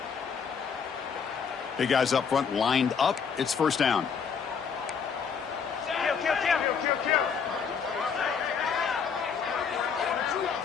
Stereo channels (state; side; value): quieter; right; 6.4 dB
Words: Big guys up front lined up. It's first down.